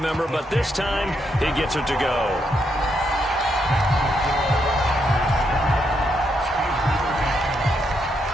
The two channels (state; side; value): normal; both; correlation 0.79